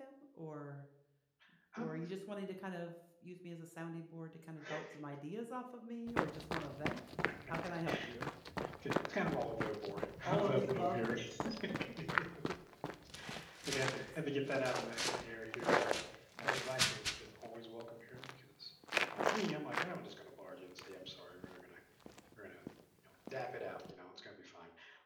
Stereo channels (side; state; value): both; identical; correlation 1.00